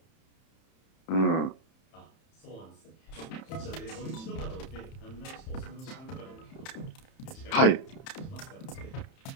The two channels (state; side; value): late; right; 31 ms